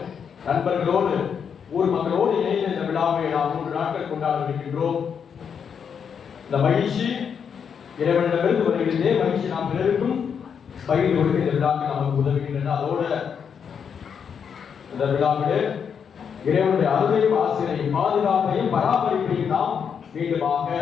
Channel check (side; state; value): right; quieter; 7.1 dB